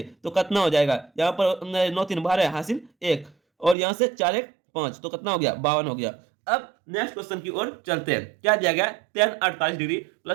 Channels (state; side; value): drops out; left; at 3.8 s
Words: तो कितना हो जाएगा, यहाँ पर 9 3 12 हासिल 1 और यहाँ से 4 1 5 तो कितना हो गया 52 हो गया। अब नेक्स्ट क्वेश्चन की ओर चलते हैं। क्या दिया गया tan 48 degree